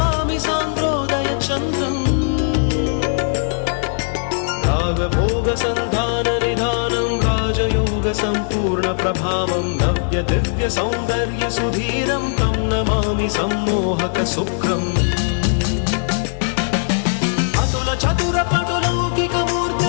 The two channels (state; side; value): silent; right; 64 dB below the other